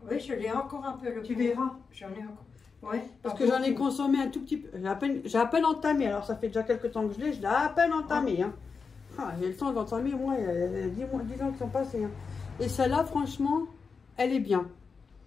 Oui, je l'ai encore un peu le Tu pot. verras. J'en ai encore. Ouais. Parce que j'en ai consommé un tout petit peu. J'ai à peine entamé. Alors ça fait déjà quelques temps que je l'ai à peine entamé. Hein. Ah, j'ai le temps d'entamer, moi, il y a 10 ans qui sont passés. Hein. Et celle-là, franchement, elle est bien.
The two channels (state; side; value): quieter; right; 5.1 dB